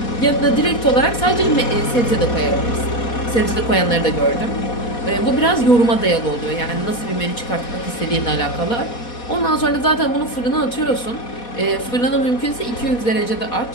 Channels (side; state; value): right; late; 4.2 ms